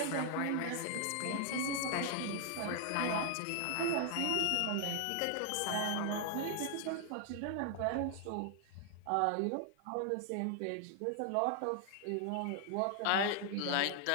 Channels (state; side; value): different; both; correlation 0.00